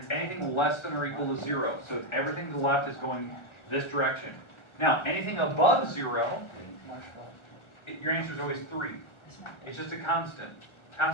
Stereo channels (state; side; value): late; right; 1.3 ms